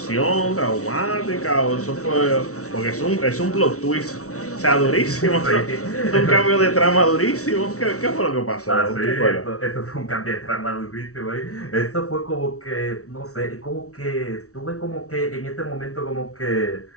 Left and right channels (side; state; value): right; late; 0.64 ms